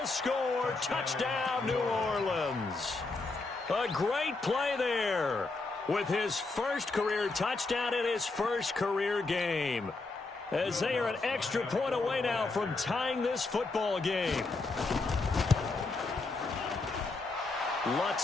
score. Touchdown, New Orleans. A great play there with his first career touchdown in his first career game. As they are an extra point away now from tying this football game.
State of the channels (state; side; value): quieter; right; 3.6 dB